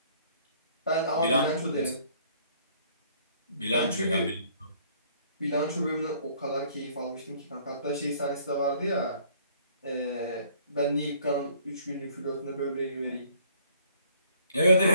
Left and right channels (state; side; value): inverted; both; correlation -0.59